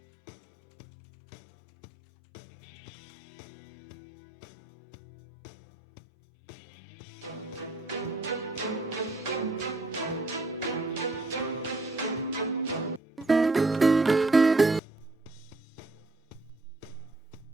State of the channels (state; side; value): quieter; left; 3.1 dB